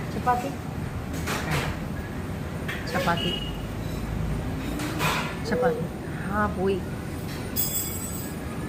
ചപ്പാത്തി ചപ്പാത്തി ചപ്പാത്തി. ആ പോയി.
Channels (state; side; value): identical; both; correlation 1.00